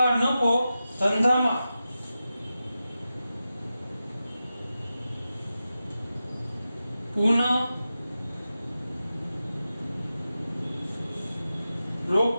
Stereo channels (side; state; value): both; inverted; correlation -0.92